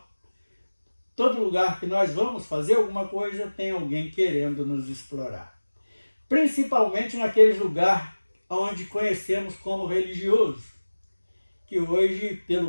todo lugar que nós vamos fazer alguma coisa, tem alguém querendo nos explorar. Principalmente naqueles lugares onde conhecemos como religioso, que hoje,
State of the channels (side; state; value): both; inverted; correlation -1.00